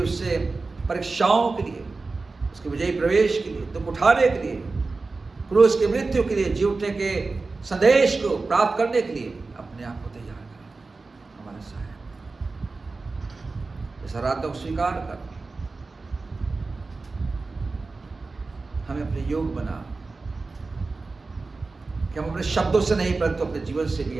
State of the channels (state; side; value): quieter; left; 3.8 dB